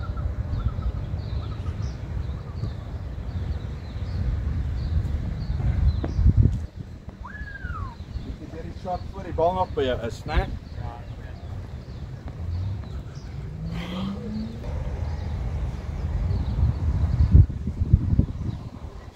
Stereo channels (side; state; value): both; identical; correlation 1.00